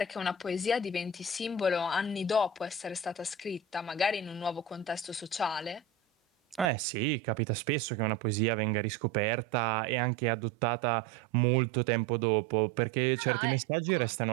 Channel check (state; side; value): drops out; left; at 6.7 s